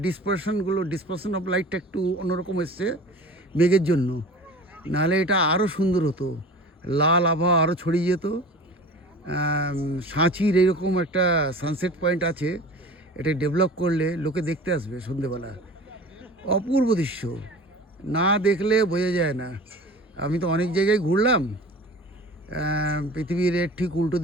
ডিসপারশন অফ লাইটটা একটু অন্যরকম এসছে মেঘের জন্য। নাহলে এটা আরও সুন্দর হতো, লাল আভা আরও ছড়িয়ে যেত। সাঁচির এরকম একটা সানসেট পয়েন্ট আছে, এটা ডেভেলপ করলে লোকে দেখতে আসবে সন্ধেবেলা। অপূর্ব দৃশ্য, না দেখলে বোঝা যায় না। আমি তো অনেক জায়গায় ঘুরলাম, পৃথিবীর এর ঠিক উল্টো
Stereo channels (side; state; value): both; normal; correlation 0.39